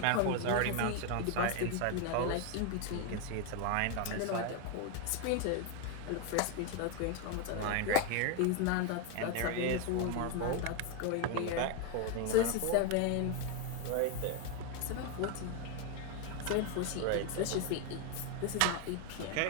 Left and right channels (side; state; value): both; different; correlation 0.01